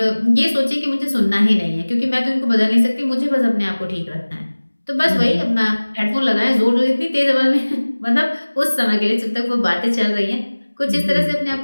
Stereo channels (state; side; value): inverted; both; correlation -1.00